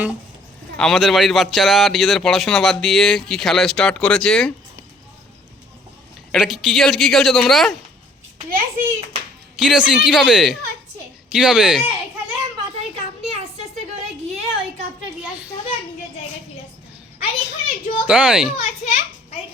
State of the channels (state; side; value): normal; both; correlation 0.58